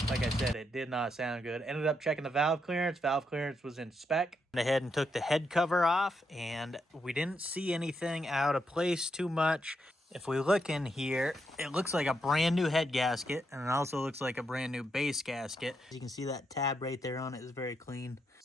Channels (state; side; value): normal; both; correlation 0.81